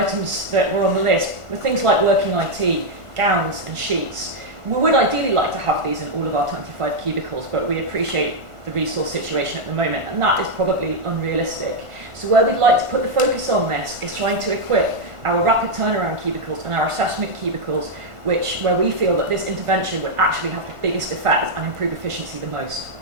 that were on the list were things like working IT, gowns and sheets. We would ideally like to have these in all of our 25 cubicles, but we appreciate the resource situation at the moment, and that is probably unrealistic. So where we'd like to put the focus on this is trying to equip our rapid turnaround cubicles and our assessment cubicles, where we feel that this intervention would actually have the biggest effect and improve efficiency the most.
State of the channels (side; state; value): left; late; 1.5 ms